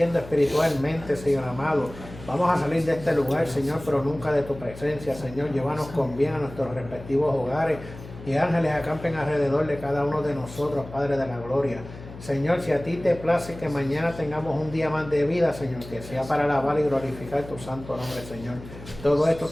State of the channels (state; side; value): noise; left; hum, 15 dB below the sound